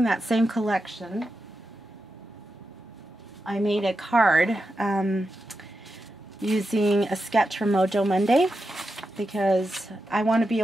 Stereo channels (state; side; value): normal; both; correlation 0.88